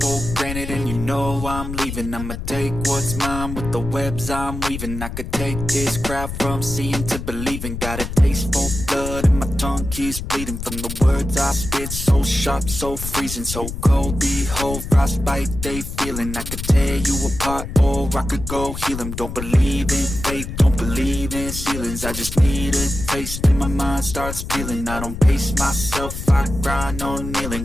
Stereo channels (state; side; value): noise; left; rumble, 7 dB below the sound